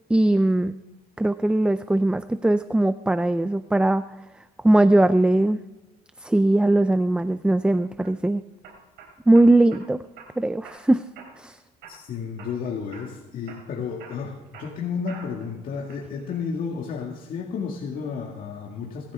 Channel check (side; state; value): both; normal; correlation 0.95